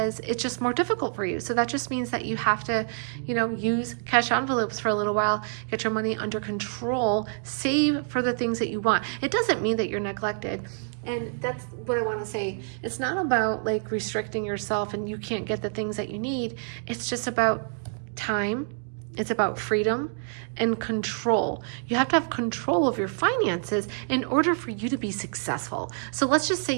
it's just more difficult for you. So that just means that you have to, use cash envelopes for a little while, get your money under control, save for the things that you want. It doesn't mean that you're neglected. And that's what I want to say. It's not about like restricting yourself and you can't get the things that you need. It's just about time. It's about freedom and control. You have to have control of your finances in order for you to be successful. So let's just say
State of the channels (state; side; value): silent; left; digital silence